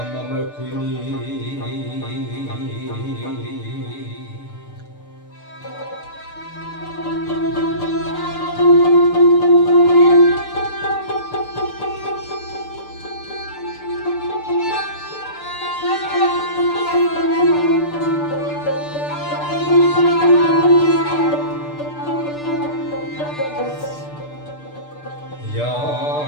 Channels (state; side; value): late; right; 6.7 ms